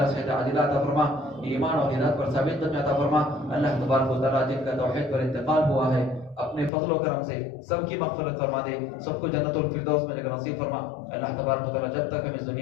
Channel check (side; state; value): right; drops out; at 6.7 s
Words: صحت عاجلہ عطا فرما، ایمان اور ہدایت پر ثابت قدمی عطا فرما۔ اللہ تبارک و تعالیٰ جن کا توحید پر انتقال ہوا ہے اپنے فضل و کرم سے سب کی مغفرت فرما دے، سب کو جنت الفردوس میں جگہ نصیب فرما۔ اللہ تبارک و تعالیٰ جب تک ہم اس